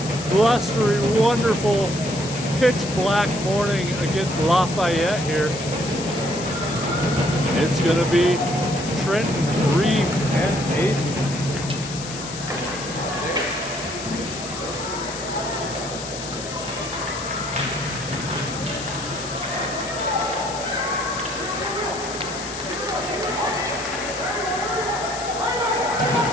blustery, wonderful, pitch black morning against Lafayette here. It's going to be Trenton, Reeves, and Aiden.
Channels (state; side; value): noise; left; hiss, 10 dB below the sound